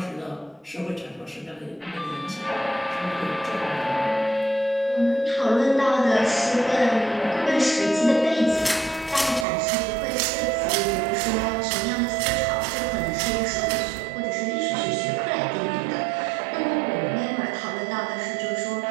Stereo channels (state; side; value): drops out; left; at 9.5 s